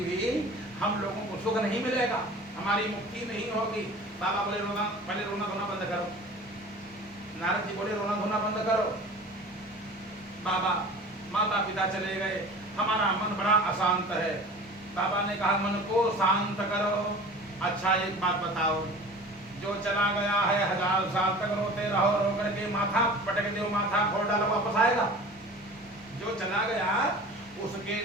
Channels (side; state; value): both; normal; correlation 0.40